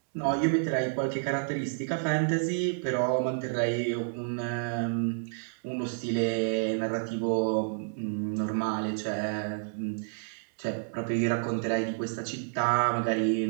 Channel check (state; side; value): silent; left; digital silence